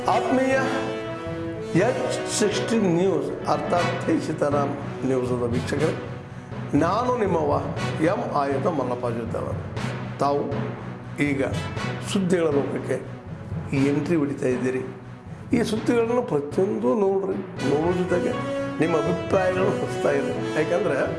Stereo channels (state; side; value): identical; both; correlation 1.00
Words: ಆತ್ಮೀಯ H16 ನ್ಯೂಸ್ ಅರ್ಥಾತ್ ಸೀತಾರಾಮ್ ನ್ಯೂಸದ ವೀಕ್ಷಕರೇ, ನಾನು ನಿಮ್ಮವ ಎಂ ಆಯುಧ ಮಲ್ಲಪ್ಪ ಜೊತೆಯವರು. ತಾವು ಈಗ ಸುದ್ದಿಗಳ ಲೋಕಕ್ಕೆ ಎಂಟ್ರಿ ಹೊಡಿತಾ ಇದ್ದೀರಿ. ಈ ಸುದ್ದಿಗಳನ್ನು ಪ್ರತಿಯೊಂದು ನೋಡೋ ಜೊತೆಗೆ ನಿಮ್ಮ ಅಭಿಪ್ರಾಯಗಳನ್ನು ಹೊಸ್ತಾ ಇದೆ. ಯಾಕಂದರೆ